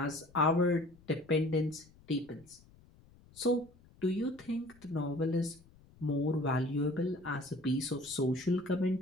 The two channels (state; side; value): noise; left; rumble, 26 dB below the sound